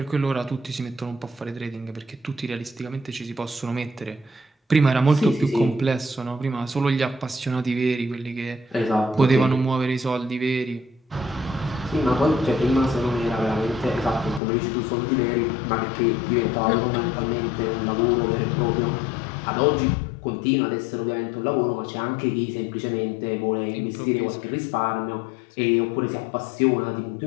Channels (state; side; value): drops out; right; at 14.4 s